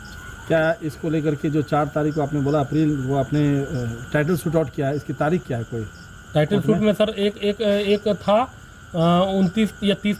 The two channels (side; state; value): both; identical; correlation 1.00